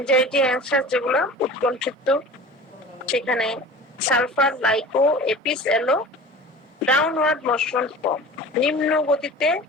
অ্যাংশাস যেগুলো উৎকণ্ঠিত, সেখানে সালফার, লাইকো, এপিস এলো। ডাউনওয়ার্ড মোশন ফর্ম, নিম্ন গতিতে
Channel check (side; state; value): both; normal; correlation 0.39